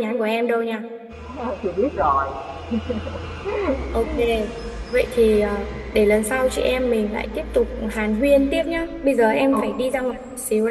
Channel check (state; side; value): identical; both; correlation 1.00